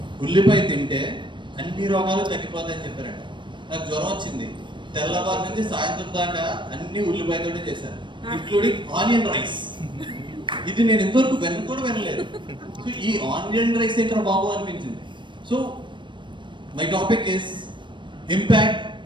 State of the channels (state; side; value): late; left; 0.23 ms